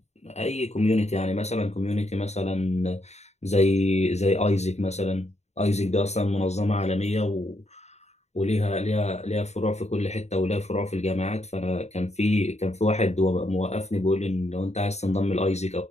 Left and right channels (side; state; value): right; late; 0.32 ms